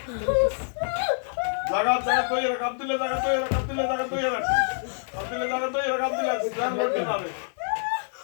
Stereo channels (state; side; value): silent; right; 61 dB below the other